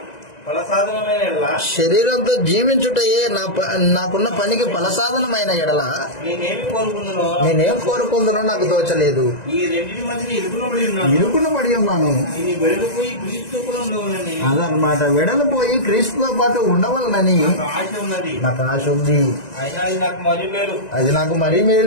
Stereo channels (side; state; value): right; late; 2.0 ms